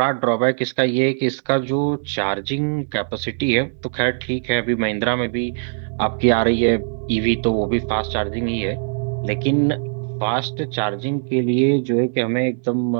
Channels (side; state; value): left; silent; digital silence